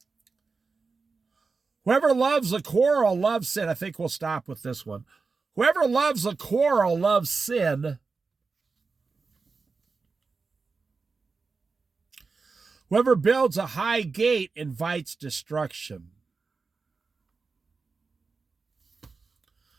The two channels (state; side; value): quieter; left; 4.4 dB